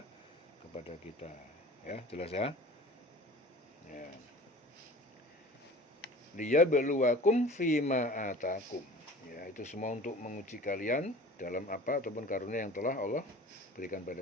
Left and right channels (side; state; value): both; normal; correlation 0.42